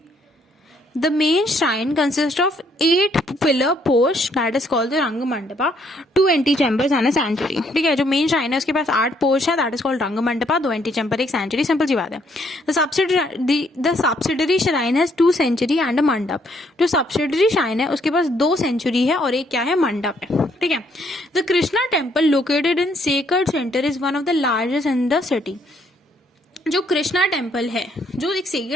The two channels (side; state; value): both; normal; correlation 0.69